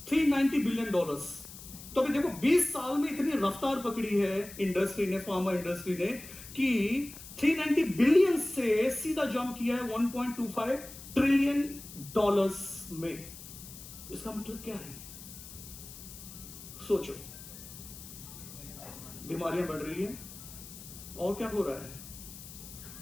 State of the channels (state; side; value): noise; left; hiss, 15 dB below the sound